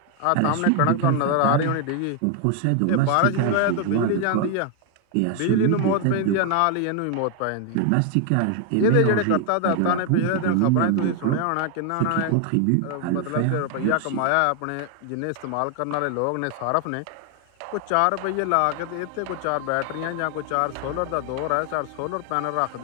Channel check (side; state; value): both; different; correlation 0.01